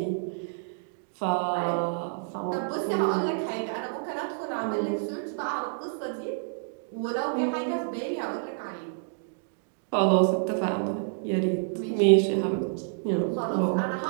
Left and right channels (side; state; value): left; silent; digital silence